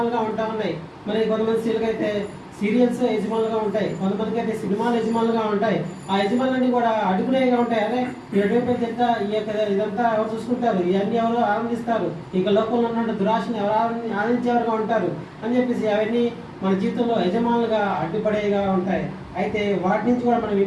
ఉంటా ఉన్నాయి. మరి కొంతమంది స్త్రీలకు అయితే సీరియల్స్ యజమానులుగా ఉంటాయి, కొంతమందికి అయితే సినిమాలు యజమానులుగా ఉంటాయి. ఆ యజమానులన్నీ కూడా అడుగునేగా ఉంటాయి. అరే ఎటువంటి తింటా ఈ యొక్క ఇదంతా ఎవరు చూసుకుంటారు, ఇవన్నీ ఎవరు ఆనందిస్తారు, ఇక లోకంలో ఉన్న దురాశని ఎవరు ఆనందించేవారుగా ఉంటారు అని చెప్పేసి అవన్నీ మన జీవితంలో యజమానులుగా అడ్డుపడేగా ఉంటాయి. అయితే వాటి నుంచి కూడా మనం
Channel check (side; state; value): both; identical; correlation 1.00